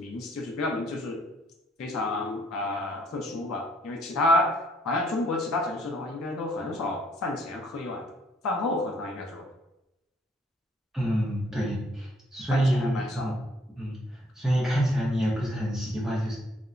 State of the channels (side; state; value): both; normal; correlation 0.65